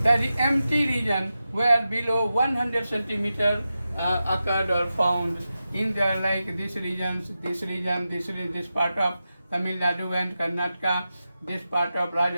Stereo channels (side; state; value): both; inverted; correlation -0.91